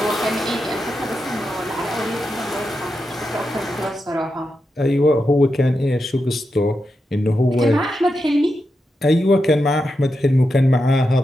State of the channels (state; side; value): normal; both; correlation 0.87